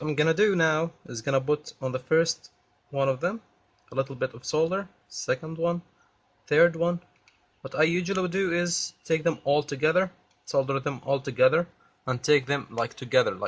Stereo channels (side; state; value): both; identical; correlation 1.00